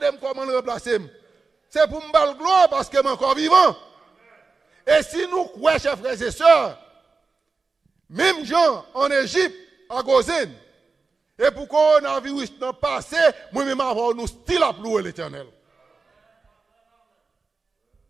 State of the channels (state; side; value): quieter; left; 4.3 dB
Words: comment le remplacer. C'est pour me le gloire parce que je suis encore vivant. Et si nous croyons, chers frères et sœurs, même gens en Égypte, à Gozen, et pour coronavirus n'a passé, moi-même avoir nous still à louer l'Éternel.